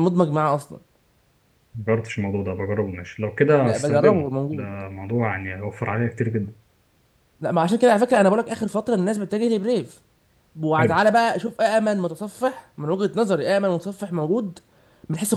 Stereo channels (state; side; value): identical; both; correlation 1.00